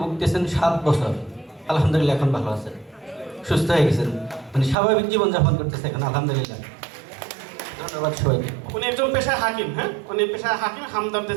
ভুগতেছেন 7 বছর। আলহামদুলিল্লাহ এখন ভালো আছেন, সুস্থ হয়ে গেছেন, উনি স্বাভাবিক জীবনযাপন করতেছে এখন আলহামদুলিল্লাহ। ধন্যবাদ সবাইকে। উনি একজন পেশায় হাকিম। হ্যাঁ, উনি পেশায় হাকিম, হামদর্দে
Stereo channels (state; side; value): drops out; left; at 4.8 s